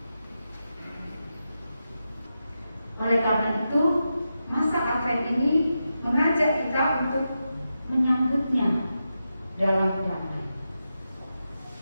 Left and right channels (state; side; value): inverted; both; correlation -0.89